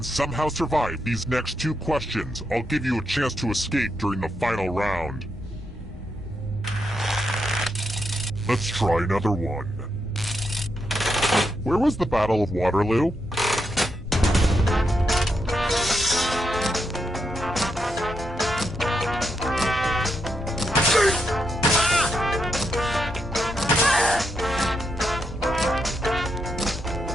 somehow survive these next two questions, I'll give you a chance to escape during the final round. Let's try another one. Where was the Battle of Waterloo?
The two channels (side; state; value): both; normal; correlation 0.82